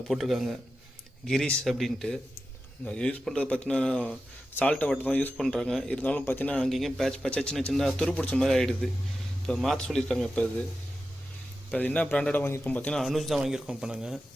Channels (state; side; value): normal; both; correlation 0.92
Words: போட்டிருக்காங்க, கிரீஸ் அப்படின்ட்டு. யூஸ் பண்ணுறது பார்த்தீங்கன்னா சால்ட்டை வாட்டர் தான் யூஸ் பண்ணுறாங்க. இருந்தாலும் பார்த்தீங்கன்னா அங்கேயும் பேட்ச் சின்ன சின்ன துரு பிடிச்ச மாதிரி ஆகிடுது. இப்போ மாற்ற சொல்லியிருக்காங்க. இப்போ அது என்ன பிராண்டடாக வாங்கியிருக்கோம் பார்த்தீங்கன்னா அனுஜ் தான் வாங்கியிருக்கோம். இப்போ நாங்கள்